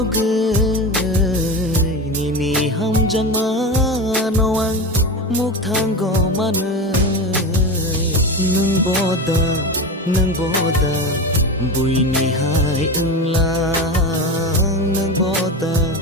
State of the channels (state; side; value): normal; both; correlation 0.23